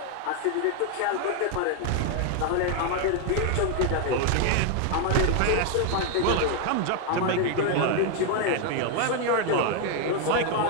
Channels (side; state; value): both; different; correlation 0.01